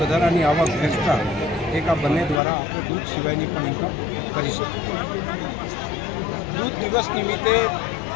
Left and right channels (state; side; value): drops out; right; at 2.4 s